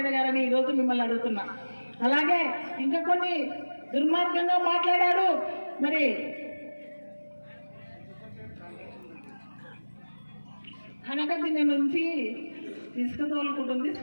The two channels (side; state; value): both; inverted; correlation -1.00